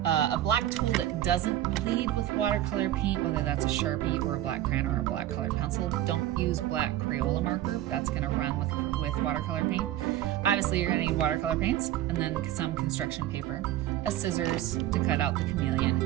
a black tool that doesn't bleed with watercolor paint, whether that's a Sharpie or a black crayon or a black colored pencil. Don't use black Crayola marker, that's going to run with watercolor paint. Obviously you're going to need watercolor paints and then some construction paper, a scissors to cut out the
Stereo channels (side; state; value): left; quieter; 13.4 dB